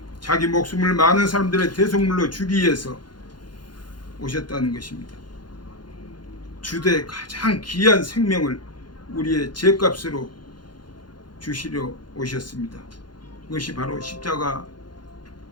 자기 목숨을 많은 사람들의 대속물로 주기 위해서 오셨다는 것입니다. 주되 가장 귀한 생명을 우리의 죄값으로 주시려 오셨습니다. 그것이 바로 십자가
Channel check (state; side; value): late; right; 0.71 ms